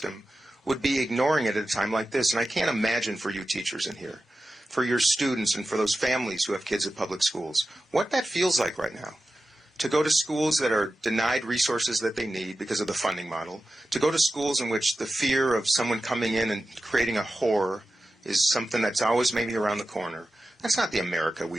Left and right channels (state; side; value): normal; both; correlation 0.93